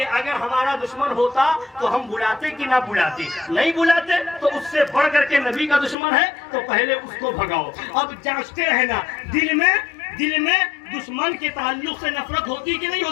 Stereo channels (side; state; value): right; drops out; at 6.0 s